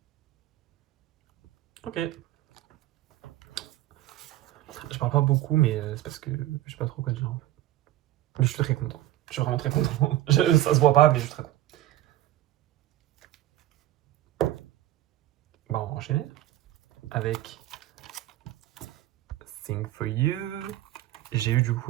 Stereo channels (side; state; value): left; quieter; 14.5 dB